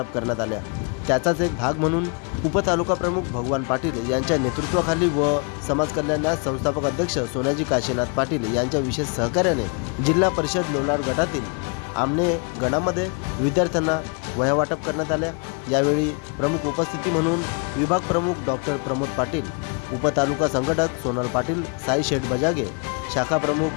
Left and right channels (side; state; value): right; quieter; 36.7 dB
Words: करण्यात आल्या। त्याचाच एक भाग म्हणून उपतालुका प्रमुख भगवान पाटील यांच्या नेतृत्वाखाली व समाज कल्याण संस्थापक अध्यक्ष सोनाजी काशीनाथ पाटील यांच्या विशेष सहकार्याने जिल्हा परिषद लोणार गटातील आमने गणामध्ये विद्यार्थ्यांना वह्या वाटप करण्यात आल्या। यावेळी प्रमुख उपस्थिती म्हणून विभाग प्रमुख डॉक्टर प्रमोद पाटील, उपतालुका संघटक सोनल पाटील, साई शेठ बजागे, शाखा